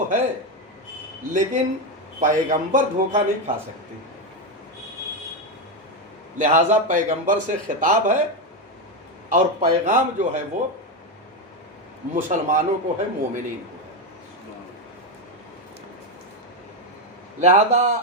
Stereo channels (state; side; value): normal; both; correlation 0.09